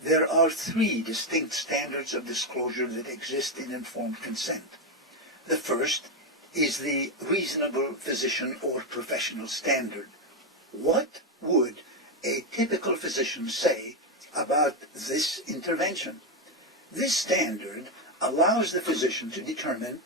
There are three distinct standards of disclosure that exist in informed consent. The first is the reasonable physician or professional standard. What would a typical physician say about this intervention? This standard allows the physician to determine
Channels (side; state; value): both; normal; correlation 0.07